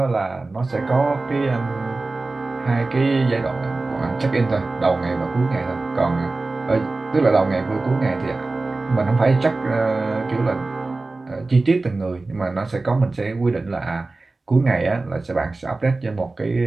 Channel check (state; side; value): quieter; left; 3.4 dB